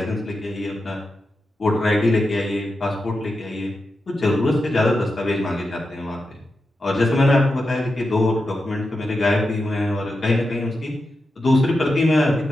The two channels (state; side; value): normal; both; correlation 0.89